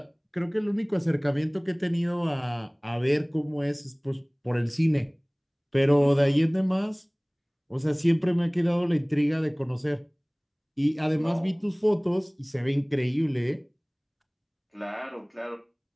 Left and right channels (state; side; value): identical; both; correlation 1.00